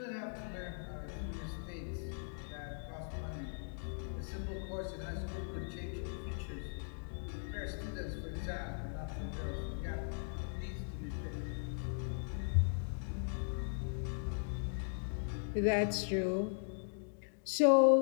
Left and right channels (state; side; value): silent; right; digital silence